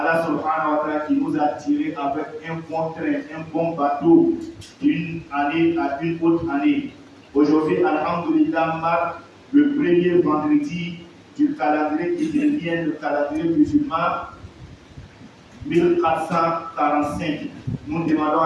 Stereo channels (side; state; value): both; identical; correlation 1.00